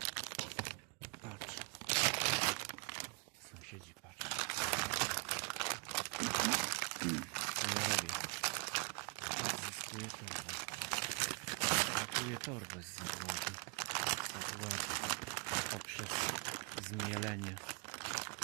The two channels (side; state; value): left; quieter; 29.7 dB